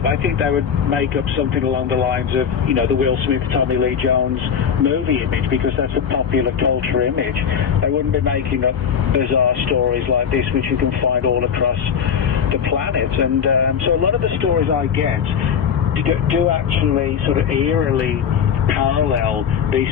I think they would make up something along the lines of, you know, the Will Smith, Tommy Lee Jones movie image, because that's a popular culture image. They wouldn't be making up bizarre stories like this, which you can find all across the planet. And so a lot of the stories I get do actually sort of eerily parallel these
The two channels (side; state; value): right; quieter; 7.4 dB